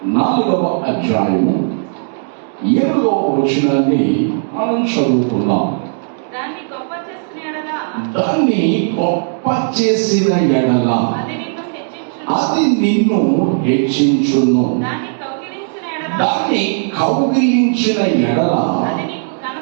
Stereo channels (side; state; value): left; silent; digital silence